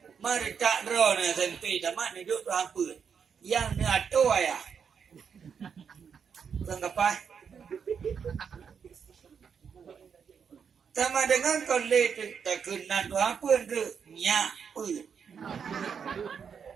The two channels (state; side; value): quieter; left; 6.8 dB